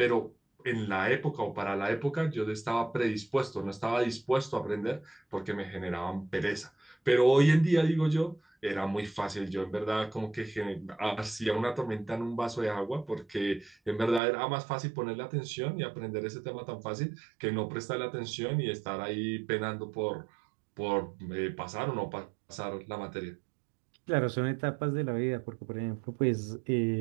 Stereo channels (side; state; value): left; drops out; at 14.2 s